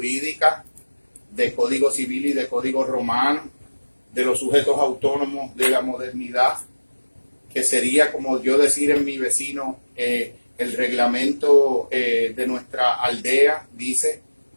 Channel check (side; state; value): both; inverted; correlation -1.00